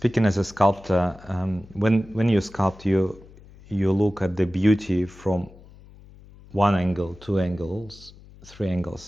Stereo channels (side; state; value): left; noise; hum, 22 dB below the sound